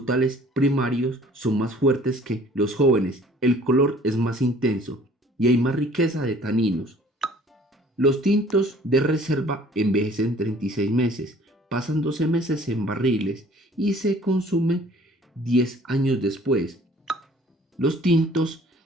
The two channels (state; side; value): normal; both; correlation 0.53